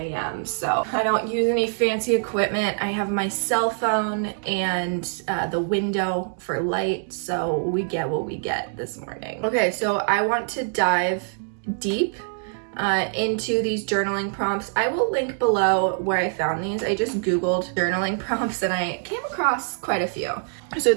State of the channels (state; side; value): silent; left; digital silence